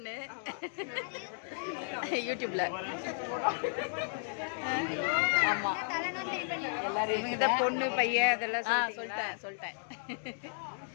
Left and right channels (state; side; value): silent; right; digital silence